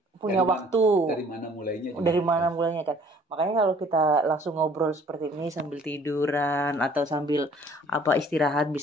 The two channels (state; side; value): normal; both; correlation 0.56